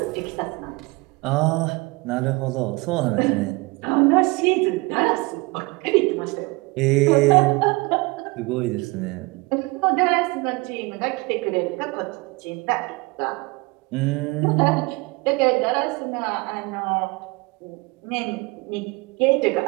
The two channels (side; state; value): left; quieter; 25.0 dB